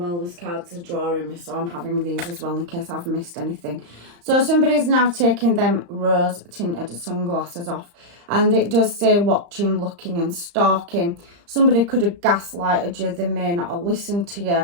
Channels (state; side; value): late; left; 35 ms